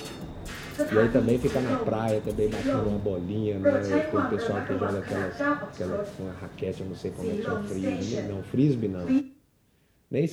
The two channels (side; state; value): both; identical; correlation 1.00